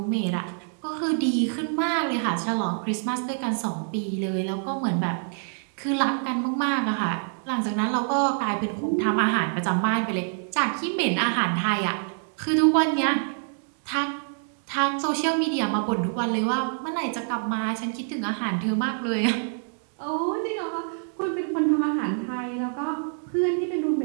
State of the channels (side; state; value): left; silent; digital silence